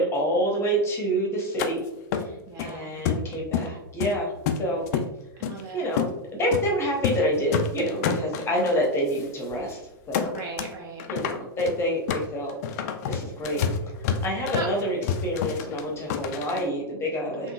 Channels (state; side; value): normal; both; correlation 0.08